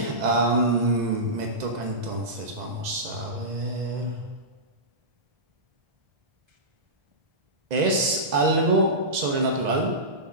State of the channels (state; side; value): late; left; 2.0 ms